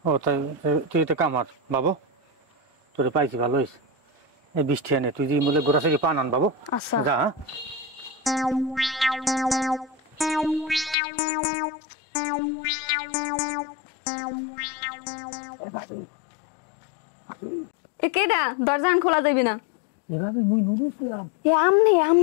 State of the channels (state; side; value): drops out; right; at 11.0 s